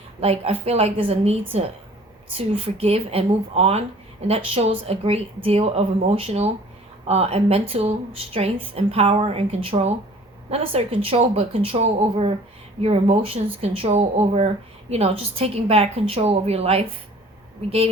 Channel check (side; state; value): both; normal; correlation 0.50